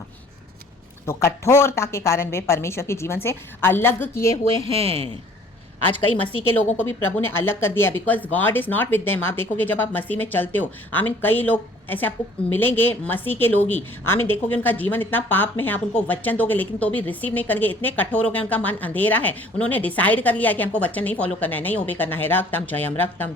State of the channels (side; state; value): both; normal; correlation 0.54